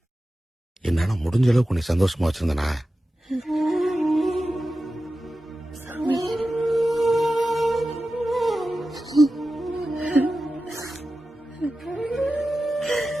என்னால முடிஞ்ச அளவுக்கு உன்னை சந்தோஷமா வச்சிருந்தனா?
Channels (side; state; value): both; normal; correlation 0.94